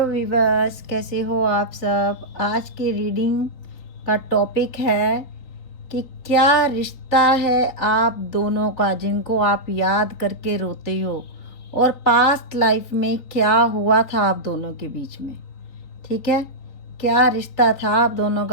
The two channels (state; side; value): late; right; 3.6 ms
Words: viewers, कैसे हो आप सब। आज की रीडिंग का टॉपिक है कि क्या रिश्ता है आप दोनों का जिनको आप याद करके रोते हो, और पास्ट लाइफ में क्या हुआ था आप दोनों के बीच में। ठीक है, क्या रिश्ता था आप दोनों